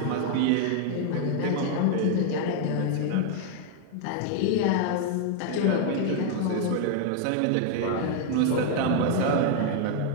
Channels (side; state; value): both; different; correlation 0.00